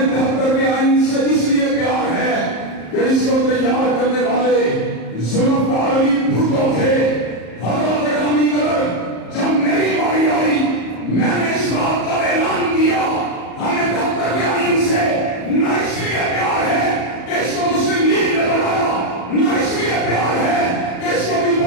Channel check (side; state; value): right; late; 34 ms